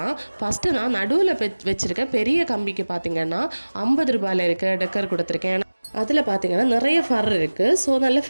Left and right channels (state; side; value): inverted; both; correlation -1.00